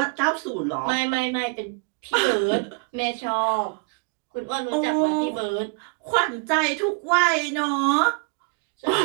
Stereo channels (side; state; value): left; quieter; 32.9 dB